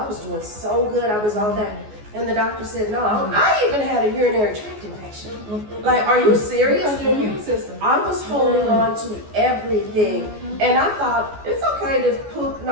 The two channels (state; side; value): late; left; 14 ms